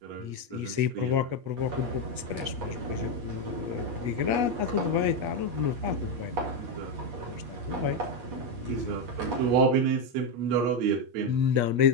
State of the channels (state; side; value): late; left; 8.4 ms